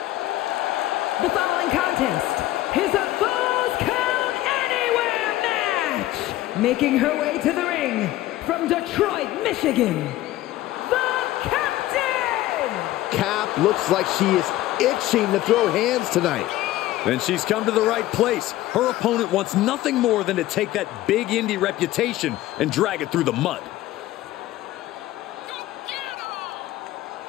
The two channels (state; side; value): quieter; right; 15.6 dB